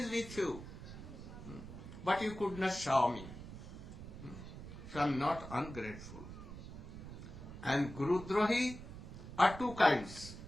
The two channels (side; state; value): right; noise; rumble, 12 dB below the sound